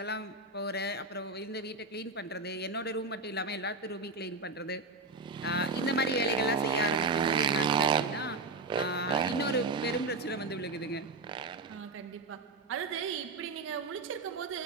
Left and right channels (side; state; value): left; quieter; 3.6 dB